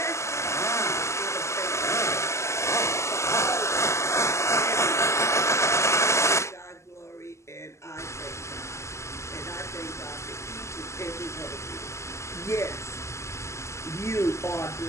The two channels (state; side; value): late; right; 0.13 ms